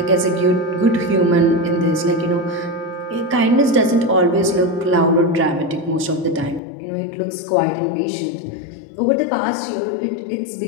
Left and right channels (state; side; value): drops out; right; at 6.6 s